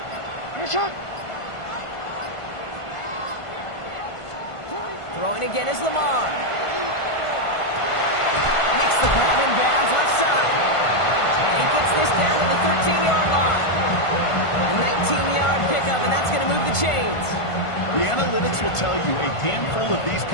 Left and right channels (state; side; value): late; right; 1.5 ms